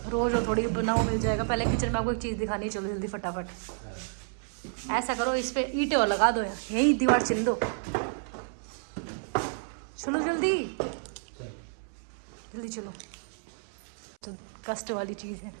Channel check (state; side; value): silent; left; 58 dB below the other